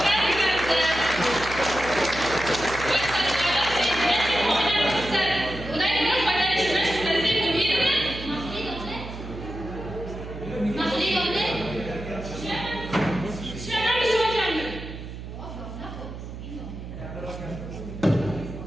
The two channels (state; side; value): noise; right; hum, 10 dB below the sound